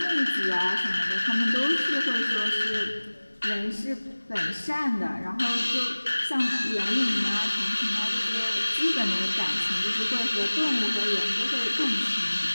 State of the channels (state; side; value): inverted; both; correlation -1.00